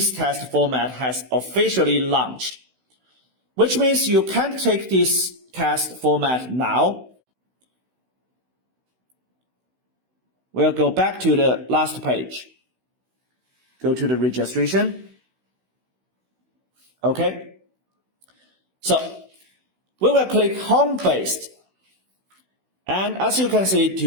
test format has officially launched, which means you can't take this test format now. We'll go back to the last page. Go to the registration. Okay. So we will click home-based. And as you can see,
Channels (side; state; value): left; late; 16 ms